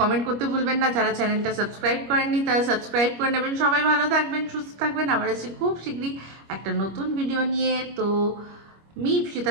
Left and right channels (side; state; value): left; late; 25 ms